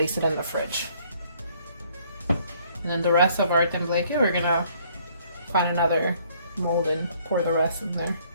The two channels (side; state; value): both; inverted; correlation -0.62